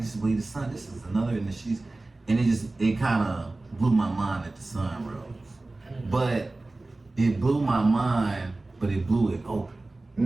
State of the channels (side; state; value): left; quieter; 3.0 dB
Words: just believe the sun. This is another, and it kind of blew my mind that the sun rose. But it blew my mind, but it blew it